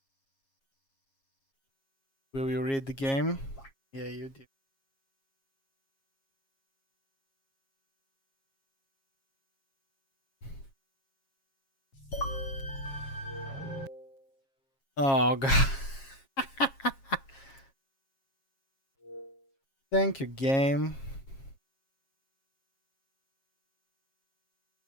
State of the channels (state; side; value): late; right; 7.4 ms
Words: Will you read the game? Yeah, you do. Oh god. Thank you, game.